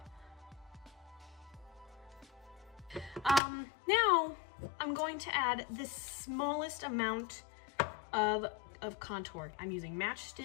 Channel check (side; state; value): right; drops out; at 3.4 s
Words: Now I'm going to add the smallest amount of contour. I'm using